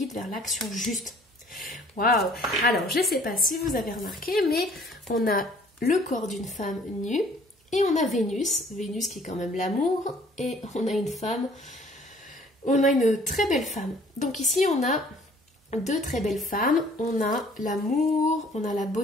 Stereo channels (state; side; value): normal; both; correlation 0.56